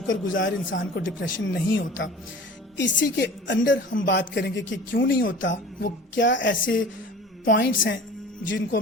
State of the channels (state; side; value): normal; both; correlation 0.41